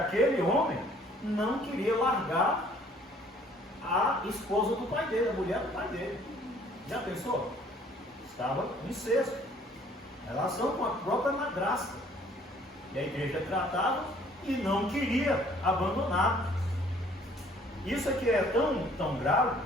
homem não queria largar a esposa do pai dele, a mulher do pai dele. Já pensou? Estava em incesto, relação com a própria madrasta. E a igreja tratava e não queria abandonar. Isso aqui é tão grave,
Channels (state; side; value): normal; both; correlation 0.58